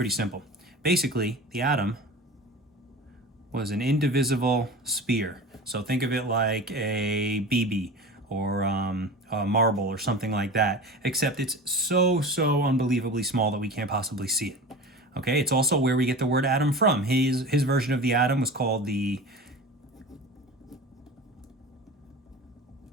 simple. Basically, the atom was an indivisible sphere. So think of it like a BB or a marble or something like that, except it's so unbelievably small that we can't possibly see it. Okay, it's also where we get the word atom from. His version of the atom was called the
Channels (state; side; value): normal; both; correlation 0.34